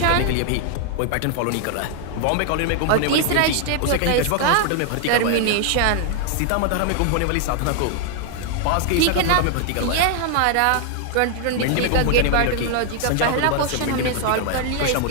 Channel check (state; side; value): different; both; correlation 0.00